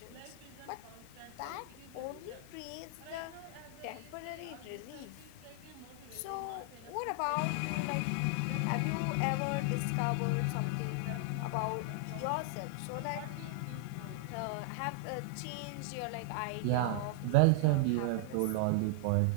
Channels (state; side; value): different; both; correlation -0.01